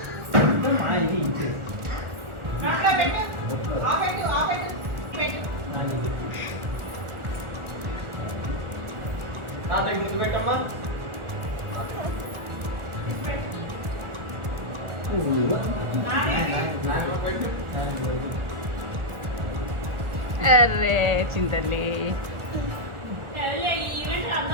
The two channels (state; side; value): late; left; 1.4 ms